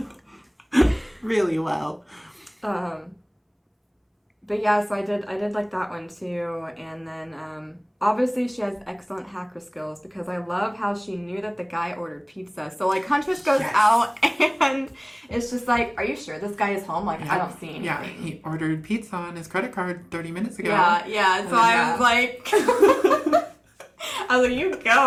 Really well. But yeah, so I did like that one too. And then obviously she has excellent hacker skills because I love how she knew that the guy ordered pizza. So like Huntress goes Yes. out and it's just like, are you sure this guy is home? Like I Yep. don't see anything. Yeah, he ordered pizza on his credit card 30 minutes ago. Yeah. So I was like, I was like, you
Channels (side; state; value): both; identical; correlation 1.00